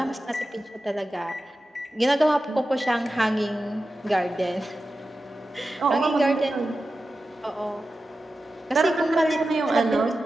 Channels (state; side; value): normal; both; correlation 0.93